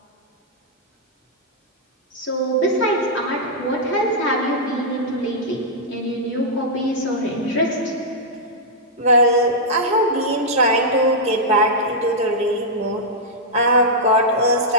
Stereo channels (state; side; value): normal; both; correlation -0.08